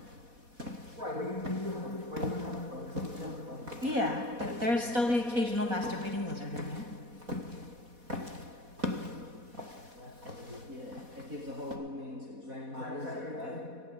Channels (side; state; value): left; late; 4.1 ms